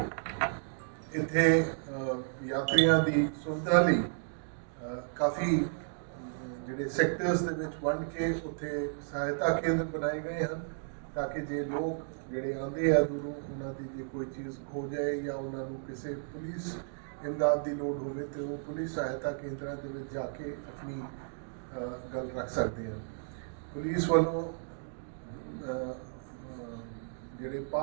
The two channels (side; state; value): left; silent; digital silence